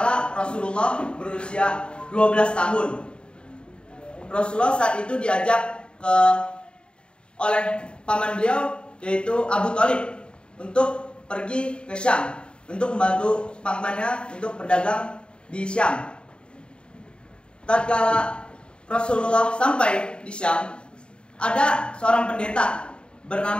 Rasulullah berusia 12 tahun, Rasulullah saat itu diajak oleh paman beliau, yaitu Abu Thalib, untuk pergi ke Syam untuk membantu pamannya untuk berdagang di Syam. Tatkala Rasulullah sampai di Syam, ada seorang pendeta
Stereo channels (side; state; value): right; late; 0.052 ms